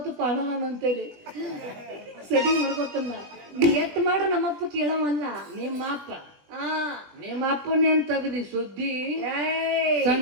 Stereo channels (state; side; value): late; left; 20 ms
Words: ಪಾಣನ ಅಂತೇಳಿ ಸೆಟ್ಟಿಂಗ್ ಮಾಡ್ಕೋತನ್ನ ನೀ ಎಟ್ ಮಾಡ್ರ ನಮ್ಮಪ್ಪ ಕೇಳವಲ್ಲ ನಿಮ್ಮ ಅಪ್ಪನೇ ಅಂತ ತಗದಿ ಸುದ್ದಿ ಏಯ್